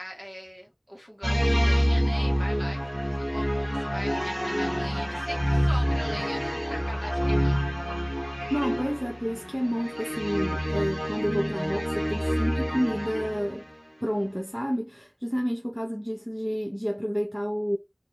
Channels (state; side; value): identical; both; correlation 1.00